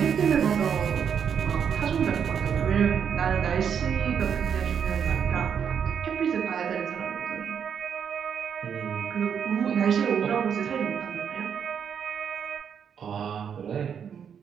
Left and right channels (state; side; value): quieter; left; 7.6 dB